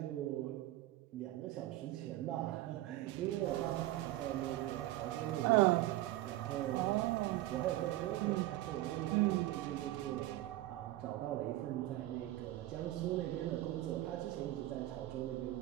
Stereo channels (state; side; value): quieter; left; 16.0 dB